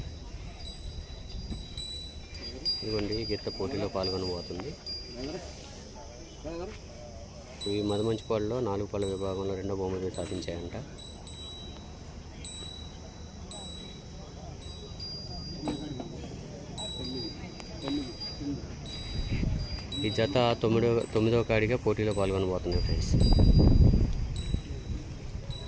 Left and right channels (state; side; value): identical; both; correlation 1.00